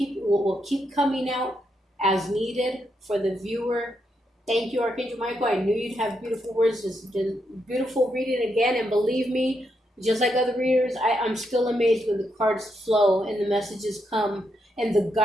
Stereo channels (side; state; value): both; normal; correlation 0.80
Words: coming out as needed for the viewer. Thank you, Archangel Michael. I knew you'd have beautiful words. This has been beautiful reading again, and believe me, just like other readers, I'm still amazed when the cards flow and the messages come and the